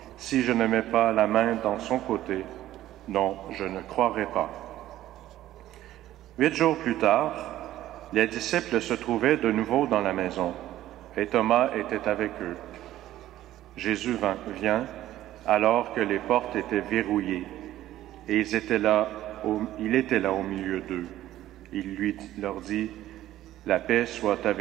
si je ne mets pas la main dans son côté, non, je ne croirai pas. » 8 jours plus tard, les disciples se trouvaient de nouveau dans la maison, et Thomas était avec eux. Jésus vient alors que les portes étaient verrouillées, et il était là au milieu d'eux. Il leur dit, « La paix soit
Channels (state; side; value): quieter; left; 13.8 dB